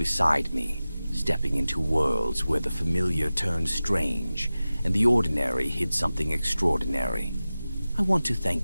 me, stepping into worlds where the familiar turned strange, and the ordinary hid something extraordinary. I want to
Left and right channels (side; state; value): both; inverted; correlation -0.96